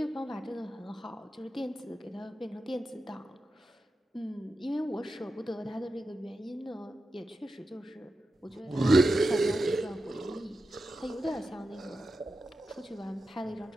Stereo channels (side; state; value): both; normal; correlation 0.91